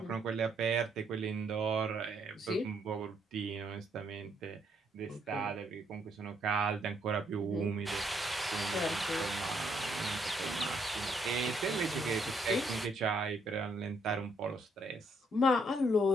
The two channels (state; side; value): normal; both; correlation 0.71